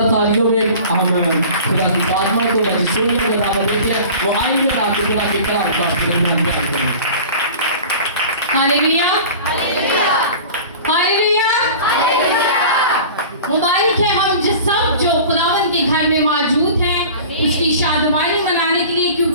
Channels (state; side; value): inverted; both; correlation -0.40